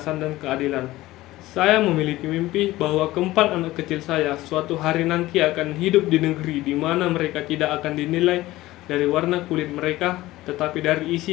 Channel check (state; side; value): quieter; right; 17.3 dB